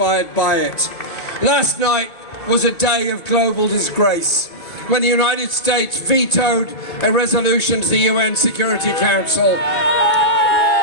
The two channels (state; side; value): late; right; 2.2 ms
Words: by it. Last night was a day of global disgrace when the United States vetoed a resolution to the UN Security Council,